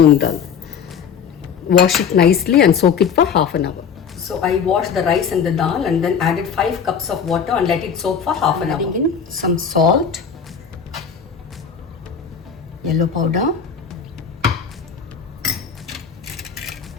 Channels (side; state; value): right; quieter; 6.9 dB